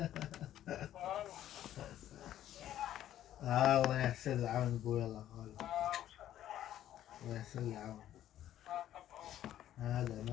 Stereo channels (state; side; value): quieter; right; 12.1 dB